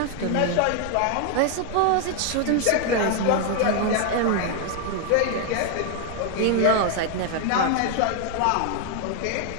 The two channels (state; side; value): different; both; correlation 0.00